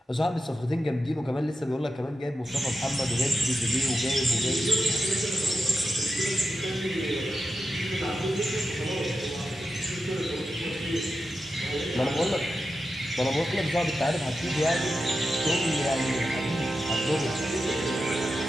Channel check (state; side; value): normal; both; correlation 0.90